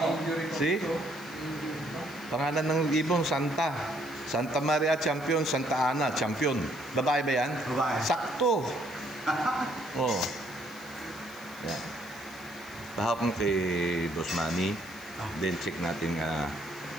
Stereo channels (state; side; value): noise; left; hiss, 21 dB below the sound